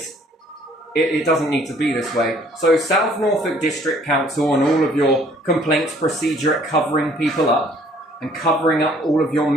it doesn't need to be this way. So South Norfolk District Council and all of your complaints procedure at covering people up and covering up all of your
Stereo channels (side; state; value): both; normal; correlation 0.59